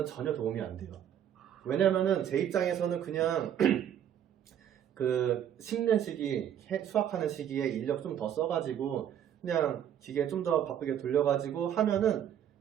전혀 도움이 안 돼요. 왜냐면은 제 입장에서는 그냥 심는 시기, 수확하는 시기에 인력 좀 더 써가지고 그냥 기계 좀 더 바쁘게 돌려가지고 하면은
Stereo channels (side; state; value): left; quieter; 9.9 dB